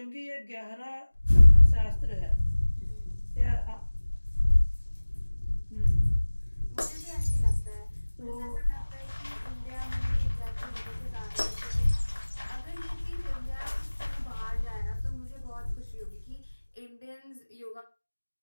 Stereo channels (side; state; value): both; inverted; correlation -1.00